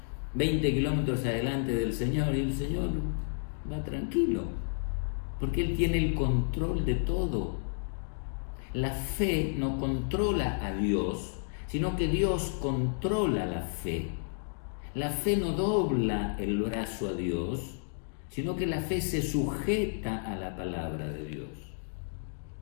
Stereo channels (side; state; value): right; silent; digital silence